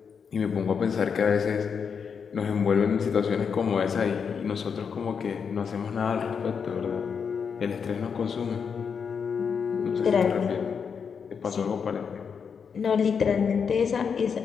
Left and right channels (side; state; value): right; quieter; 6.4 dB